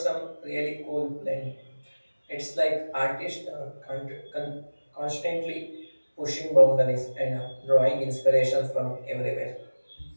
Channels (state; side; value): inverted; both; correlation -1.00